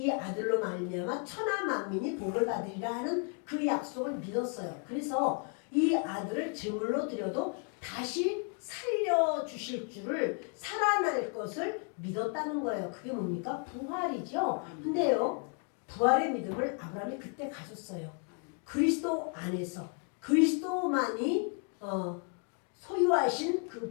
아들로 말미암아 천하 만민이 복을 받으리라 하는 그 약속을 믿었어요. 그래서 이 아들을 제물로 드려도 다시 살려주실 줄을, 살아날 것을 믿었다는 거예요. 그게 뭡니까? 부활이죠. 근데요 부활의 믿음을 아브라함이 그때 가졌어요. 그리스도 안에서 그리스도만이 소유하신 그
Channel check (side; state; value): right; quieter; 39.9 dB